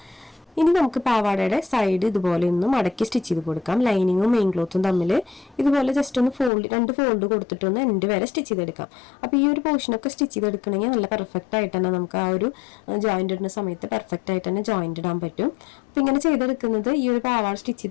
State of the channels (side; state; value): right; drops out; at 6.5 s